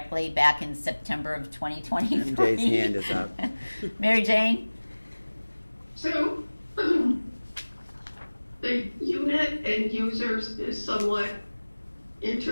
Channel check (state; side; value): inverted; both; correlation -1.00